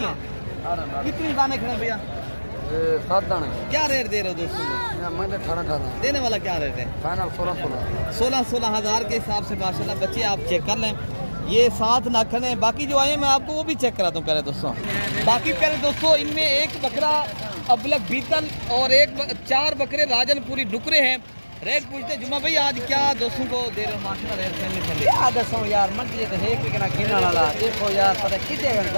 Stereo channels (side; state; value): both; inverted; correlation -1.00